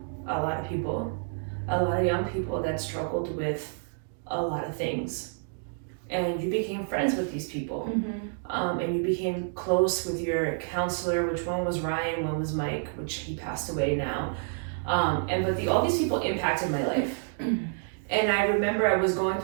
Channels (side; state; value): left; silent; digital silence